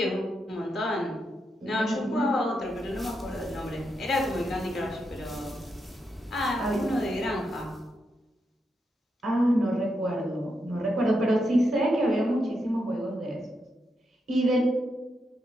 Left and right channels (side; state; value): both; normal; correlation 0.83